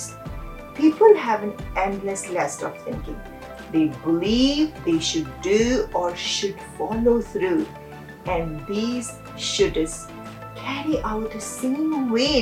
People have an endless list of thinking. They believe they should do or should follow through, and these shoulds carry out the same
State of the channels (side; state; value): both; identical; correlation 1.00